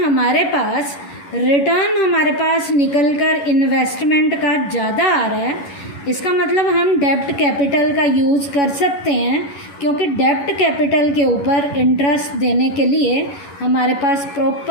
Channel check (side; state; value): right; late; 11 ms